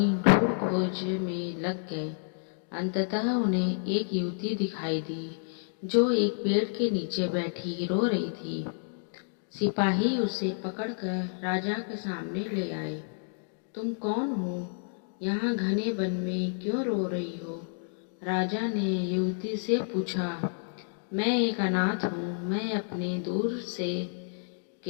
ढूंढ खोज में लग गए। अंततः उन्हें एक युवती दिखाई दी जो एक पेड़ के नीचे बैठी रो रही थी। सिपाही उसे पकड़कर राजा के सामने ले आए। तुम कौन हो? यहाँ घने वन में क्यों रो रही हो? राजा ने युवती से पूछा। मैं एक अनाथ हूँ। मैं अपने दूर से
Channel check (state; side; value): silent; right; digital silence